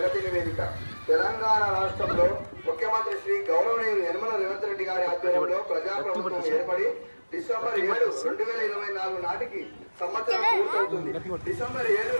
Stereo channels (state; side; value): inverted; both; correlation -1.00